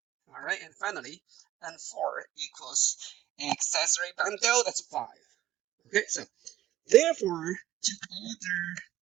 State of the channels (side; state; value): left; quieter; 13.8 dB